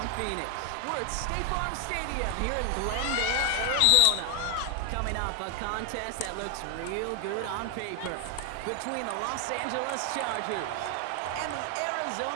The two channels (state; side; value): different; both; correlation 0.00